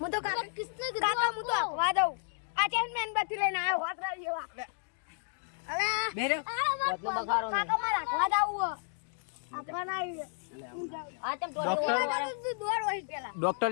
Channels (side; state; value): right; silent; digital silence